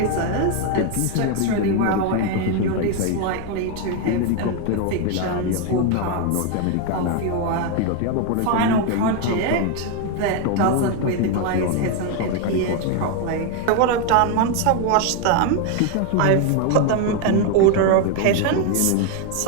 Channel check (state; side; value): different; both; correlation 0.01